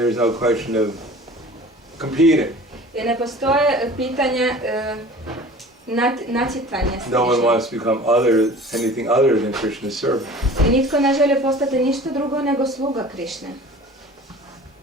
no question of competing. I ne postoje pitanje natjecanja s No one Krišnom. wants to become anything other than Krishna's servant. I nitko ne želi postati ništa drugo nego sluga Krišne.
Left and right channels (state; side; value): normal; both; correlation 0.43